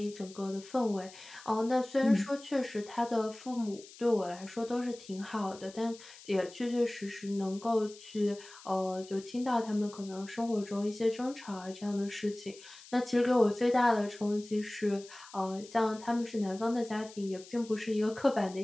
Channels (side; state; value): left; noise; hiss, 19 dB below the sound